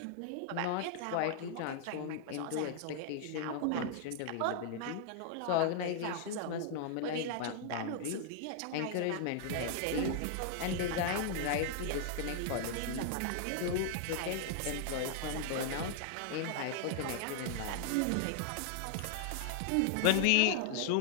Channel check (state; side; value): different; both; correlation 0.00